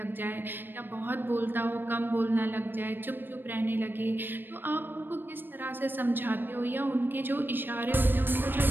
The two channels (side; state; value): left; late; 0.095 ms